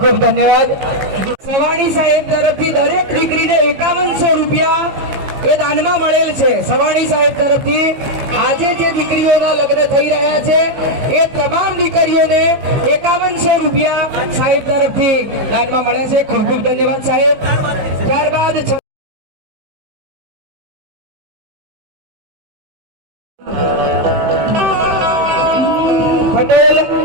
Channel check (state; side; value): late; left; 15 ms